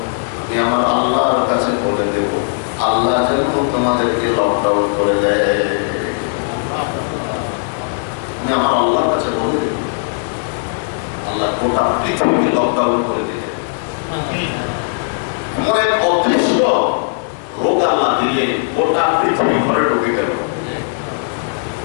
আমি আমার আল্লাহর কাছে বলে দেব, আল্লাহ যেন তোমাদেরকে লকডাউন করে দেয়। আমি আমার আল্লাহর কাছে বলে দেব, আল্লাহ গোটা পৃথিবীকে লকডাউন করে দিলে। এমন এক অদৃশ্য রোগ আল্লাহ দিলে গোটা পৃথিবী ঘরে ঢুকে গেল,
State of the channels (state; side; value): silent; right; digital silence